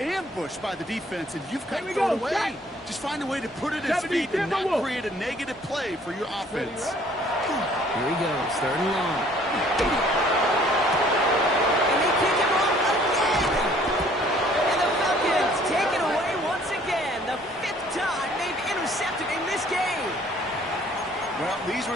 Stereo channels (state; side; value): normal; both; correlation 0.58